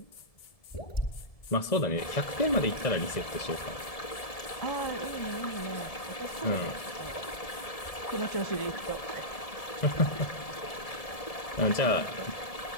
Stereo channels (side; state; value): right; late; 1.7 ms